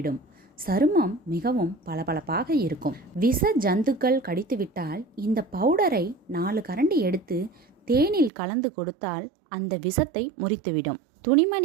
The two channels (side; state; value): left; drops out; at 8.3 s